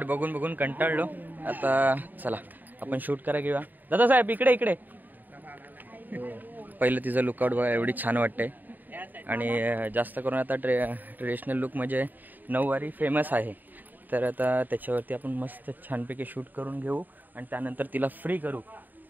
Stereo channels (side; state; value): left; late; 0.087 ms